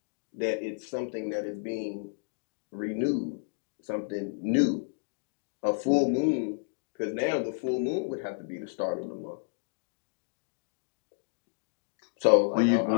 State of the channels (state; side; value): silent; right; digital silence